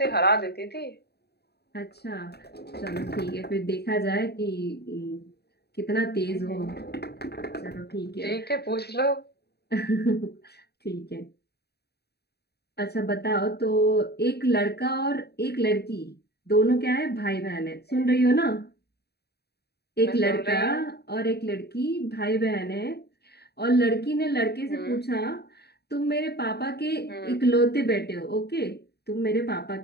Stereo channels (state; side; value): late; right; 0.47 ms